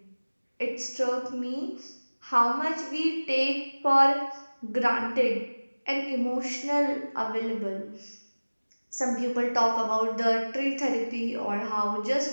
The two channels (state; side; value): inverted; both; correlation -1.00